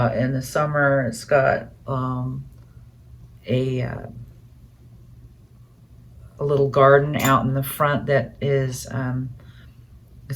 In the summer, it's got a little garden out in the front that is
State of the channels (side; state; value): both; identical; correlation 1.00